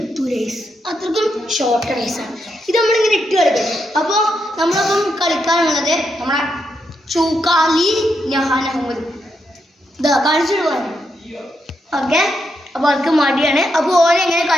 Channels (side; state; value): both; normal; correlation 0.82